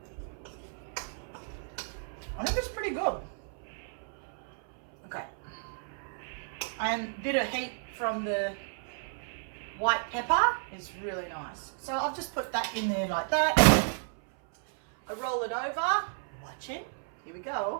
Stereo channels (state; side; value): silent; left; 56 dB below the other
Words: I think it's pretty good. Okay. And a bit of heat from the white pepper is really nice. So I've just put that in there like that. I roll it over. Watch it. Here we